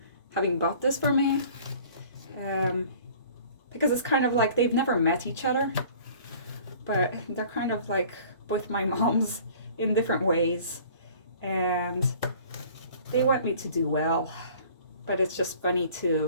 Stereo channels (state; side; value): inverted; both; correlation -0.49